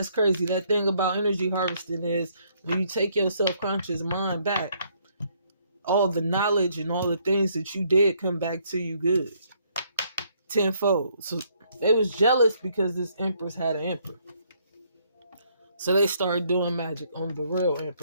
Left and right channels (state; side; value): inverted; both; correlation -0.68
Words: crazy. That thing about energy harvesting is when you take your self-conscious mind back, all the knowledge and all the things that you did come back to you good. Tenfold. So they was jealous because this Empress had an emperor. So they started doing magic on the real